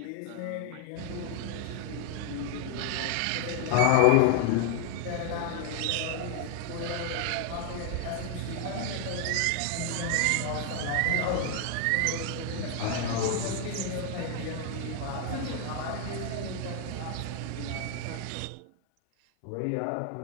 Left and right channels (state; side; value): different; both; correlation 0.00